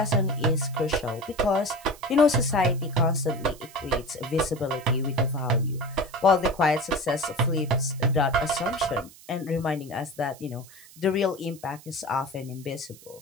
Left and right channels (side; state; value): right; noise; hiss, 21 dB below the sound